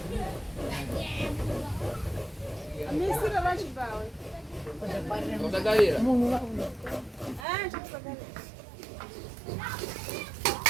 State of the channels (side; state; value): left; drops out; at 7.5 s